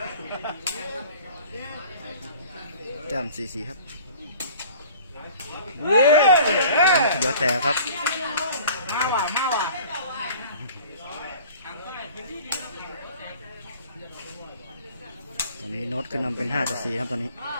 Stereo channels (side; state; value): both; inverted; correlation -0.46